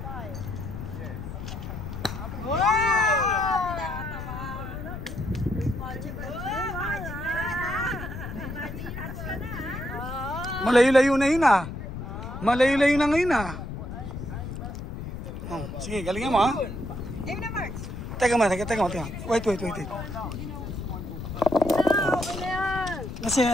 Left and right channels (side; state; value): left; noise; rumble, 8 dB below the sound